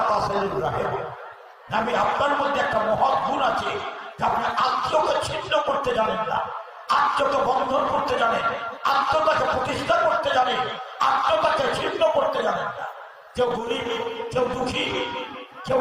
তাসিলুর রাহিম, আমি আপনার মধ্যে একটা মহৎ গুণ আছে যে আপনি আত্মকে ছিন্ন করতে জানেন না, আত্মকে বন্ধন করতে জানেন, আত্মটাকে প্রতিষ্ঠা করতে জানেন, আত্মটাকে ছিন্ন করতে জানেন না। কেউ গরিব, কেউ দুঃখী, কেউ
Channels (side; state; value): both; identical; correlation 1.00